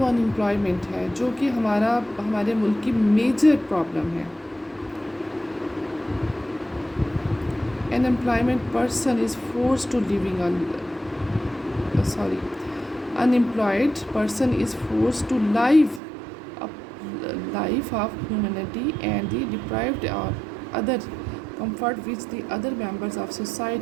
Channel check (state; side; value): drops out; left; at 16.0 s